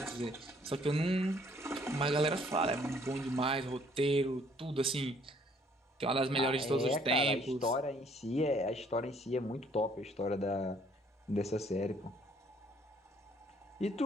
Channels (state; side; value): normal; both; correlation 0.62